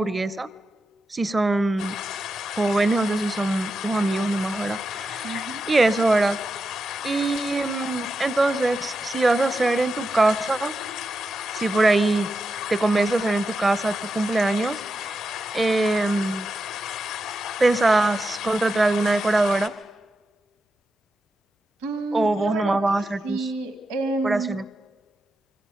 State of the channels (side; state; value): both; normal; correlation 0.88